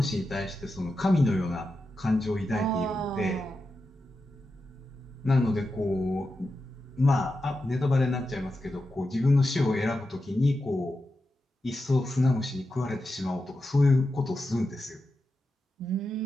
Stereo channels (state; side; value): normal; both; correlation 0.89